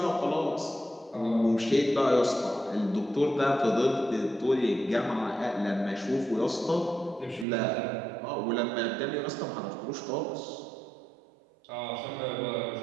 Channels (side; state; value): left; drops out; at 7.5 s